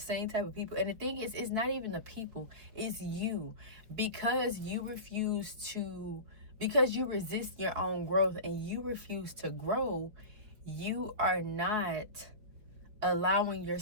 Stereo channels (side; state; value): left; late; 4.8 ms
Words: type of people. And the thing is, it's not even the people, it's you. Because you resist your own growth and you refuse to grow, you are not allowing